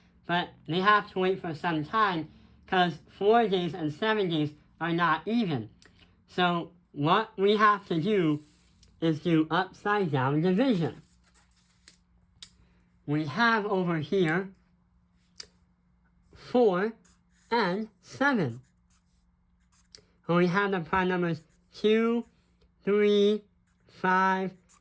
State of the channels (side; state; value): both; identical; correlation 1.00